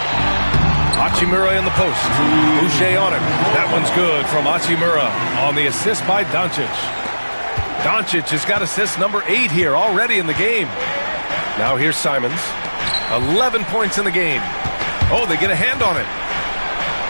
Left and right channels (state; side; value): inverted; both; correlation -1.00